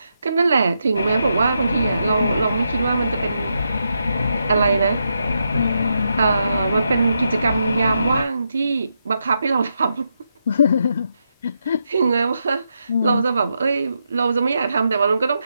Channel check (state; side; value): inverted; both; correlation -0.83